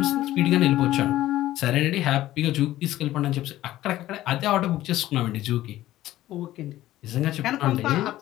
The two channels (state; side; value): quieter; right; 14.8 dB